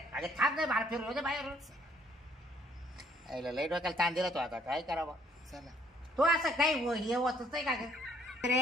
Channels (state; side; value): normal; both; correlation 0.65